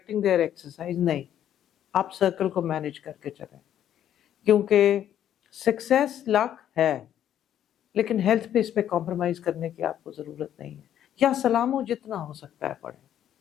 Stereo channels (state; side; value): quieter; right; 10.6 dB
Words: their exercise. نہیں، آپ سرکل کو مینج کر کے چلیں، کیونکہ سکسیس لک ہے لیکن ہیلتھ پہ اس پہ کمپرومائز کرنے کی آپ کو ضرورت نہیں ہے۔ یا سلاموں جتنا ہو سکتا ہے پڑھیں،